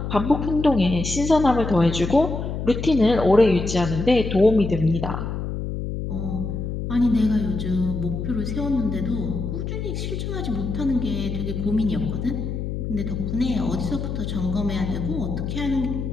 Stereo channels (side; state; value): left; noise; hum, 4 dB below the sound